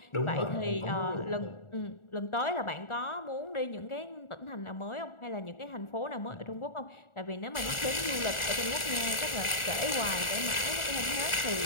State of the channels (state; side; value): late; right; 1.4 ms